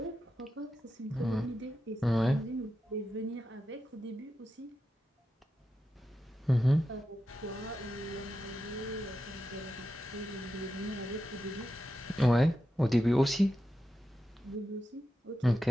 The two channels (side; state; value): both; normal; correlation 0.89